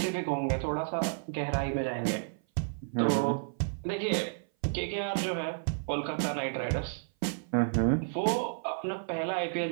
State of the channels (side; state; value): left; silent; 55 dB below the other